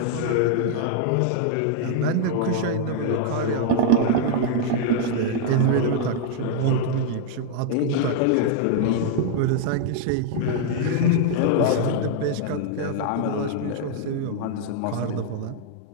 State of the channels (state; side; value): different; both; correlation 0.00